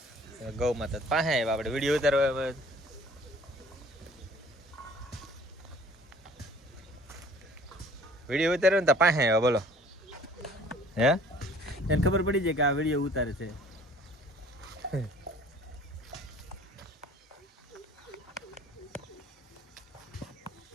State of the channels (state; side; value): normal; both; correlation 0.52